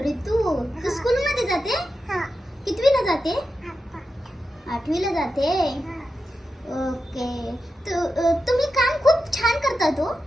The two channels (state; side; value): normal; both; correlation 0.90